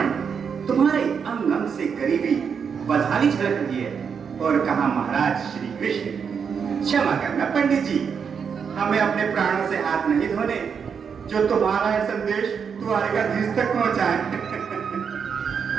तुम्हारे अंग अंग से गरीबी बदहाली झलक रही है। और कहा महाराज श्री कृष्ण। क्षमा करना पंडित जी, हमें अपने प्राणों से हाथ नहीं धोने जो तुम्हारा यह संदेश द्वारकाधीश तक पहुंचाए।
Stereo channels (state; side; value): quieter; left; 6.6 dB